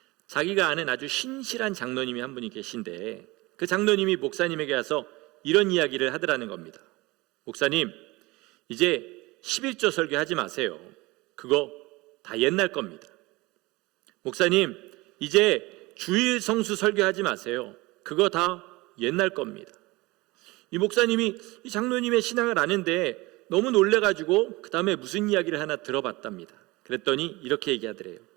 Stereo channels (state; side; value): quieter; left; 22.2 dB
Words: 자기가 아는 아주 신실한 장로님이 한 분이 계신데, 그 장로님이 목사님에게 와서 이런 이야기를 하더라는 겁니다. 목사님, 이제 11조 설교하지 마세요. 그거 다 옛날 겁니다. 목사님, 이제 주일 성수 설교하지 마세요. 그거 다 옛날 겁니다. 이 목사님이 이 장로님의 신앙을 아는데 너무 놀래가지고 그 다음에 무슨 이야기를 하나 들어봤답니다. 그랬더니 이렇게 얘기하더래요.